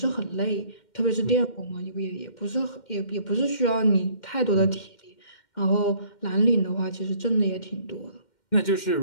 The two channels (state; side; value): late; right; 2.1 ms